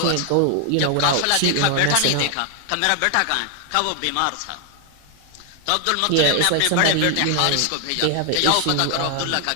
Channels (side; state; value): both; different; correlation 0.00